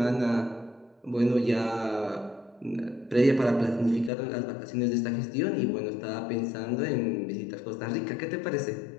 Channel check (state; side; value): drops out; right; at 4.1 s